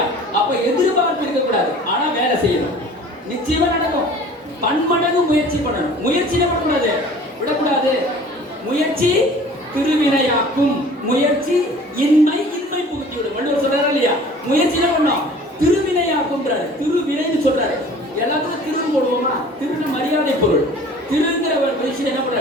அப்ப எதிர்பார்ப்பு இருக்கக்கூடாது, ஆனா வேலை செய்யணும். நிச்சயமா நடக்கும். பன்மடங்கு முயற்சி பண்ணணும். முயற்சி என்ன பண்ணக்கூடாது? விடக்கூடாது. முயற்சி திருவினையாக்கும். முயற்சி இன்மை புகுத்தி விடும். வள்ளுவர் சொல்றாரு இல்லையா? முயற்சி என்ன பண்ணோம்? திருவினையாக்கும்ன்றாரு. திருவினைன்னு சொல்றாரு. எல்லாத்துக்கும் திரு போடுவோமா? திருவினை மரியாதை பொருள். திருங்கிற விஷயம் என்ன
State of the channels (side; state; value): both; normal; correlation 0.47